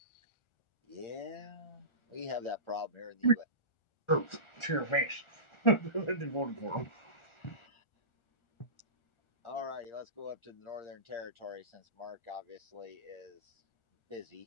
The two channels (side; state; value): right; late; 1.4 ms